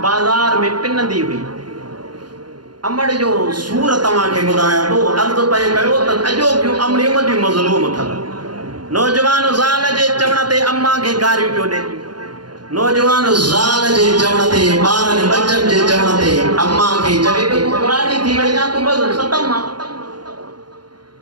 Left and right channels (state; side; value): late; left; 0.71 ms